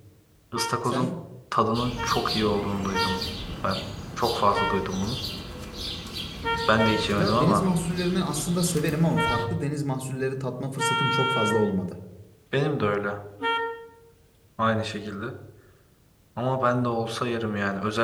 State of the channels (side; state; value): both; identical; correlation 1.00